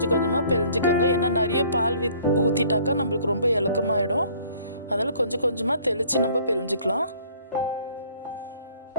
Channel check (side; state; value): both; inverted; correlation -0.57